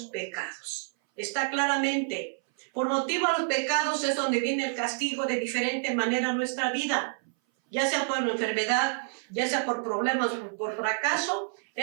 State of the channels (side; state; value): left; silent; 58 dB below the other